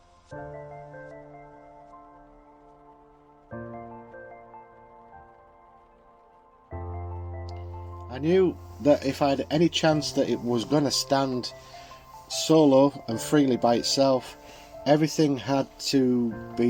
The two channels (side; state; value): both; identical; correlation 1.00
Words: I knew that if I had any chance that it was going to stand solo and freely by itself, everything had to